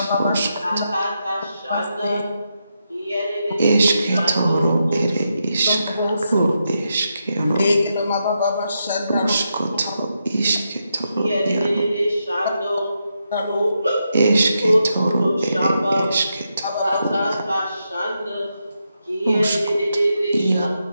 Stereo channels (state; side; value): inverted; both; correlation -0.84